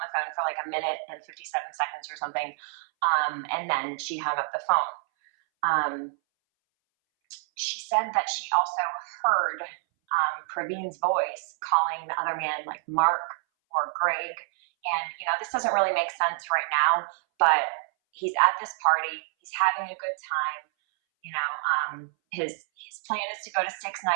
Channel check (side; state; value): left; silent; 60 dB below the other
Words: the phone for like a minute and 57 seconds or something. And then she hung up the phone. Um, she said that she also heard Praveen's voice calling the other man like Mark or Greg. And, you know, this doesn't really make sense right now, but he's at this party, he's having a good time. You know, his plan is to go to Six